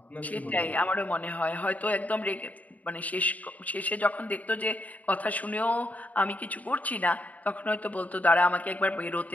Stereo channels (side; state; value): right; late; 0.073 ms